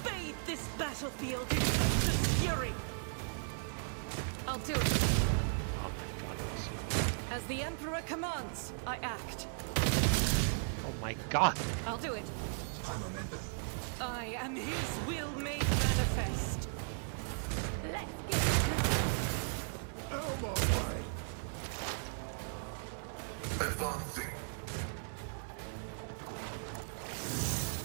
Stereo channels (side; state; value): left; silent; 53 dB below the other